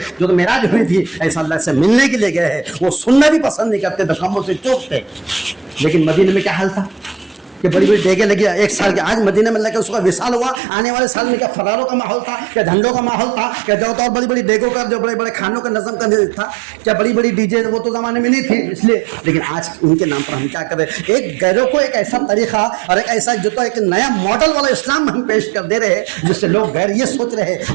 جو تو معراج ہوئی تھی, ایسا اللہ سے ملنے کے لیے گئے ہیں. وہ سننا بھی پسند نہیں کرتے, دکموں سے چوک تھے. لیکن مدینے میں کیا حال تھا کہ بڑی بڑی ڈیگیں لگی, ایک سال کے آج مدینے میں لگے اس کا وصال ہوا, آنے والے سال میں کیا فراروں کا ماحول تھا, کیا جھنڈوں کا ماحول تھا, کیا جو تو اور بڑی بڑی ڈیگوں کا جو بڑے بڑے کھانوں کا نظم کا تھا, کیا بڑی بڑی ڈی جے وہ تو زمانے میں نہیں تھی اس لیے. لیکن آج ان کے نام پر ہم کیا کریں, ایک غیروں کو ایک ایسا طریقہ اور ایک ایسا جو تو ایک نیا ماڈل والا اسلام ہم پیش کر دے رہے ہیں جس سے لوگ غیر یہ سوچ رہے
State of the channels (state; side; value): drops out; left; at 10.6 s